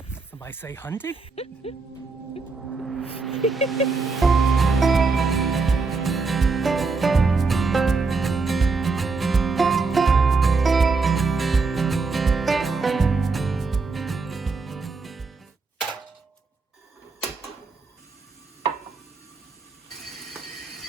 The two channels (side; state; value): left; quieter; 4.2 dB